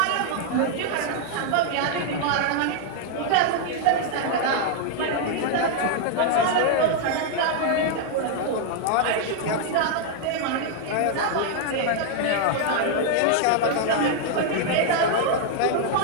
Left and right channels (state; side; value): different; both; correlation 0.00